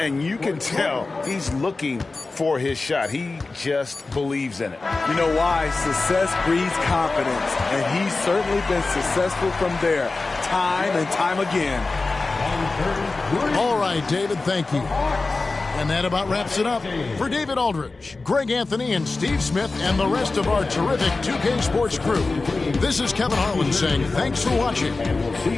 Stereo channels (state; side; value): quieter; right; 3.6 dB